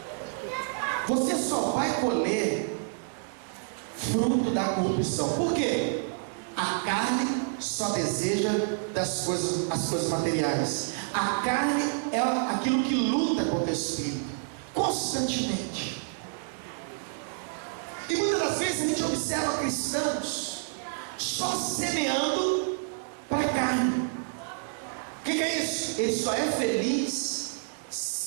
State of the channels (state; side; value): silent; left; digital silence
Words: você só vai colher fruto da corrupção. Por quê? A carne só deseja as coisas materiais. A carne é aquilo que luta contra o Espírito constantemente. E muitas das vezes a gente observa cristãos só semeando para a carne. O que é isso? Ele só é feliz